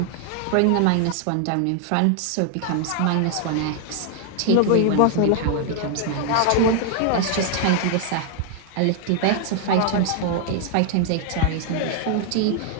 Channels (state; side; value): different; both; correlation 0.00